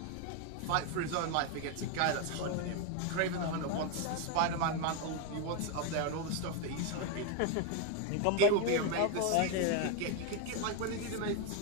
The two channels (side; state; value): both; different; correlation 0.02